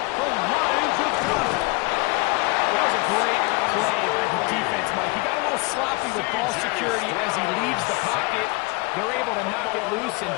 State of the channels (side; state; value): right; quieter; 26.6 dB